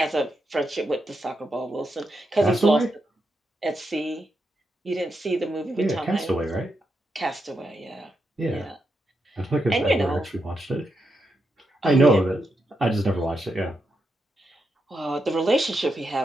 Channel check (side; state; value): both; normal; correlation 0.84